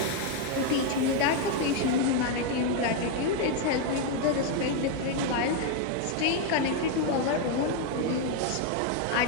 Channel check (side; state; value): both; different; correlation 0.01